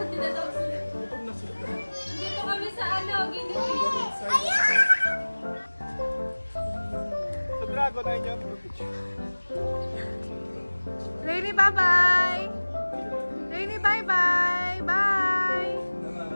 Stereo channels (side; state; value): both; inverted; correlation -1.00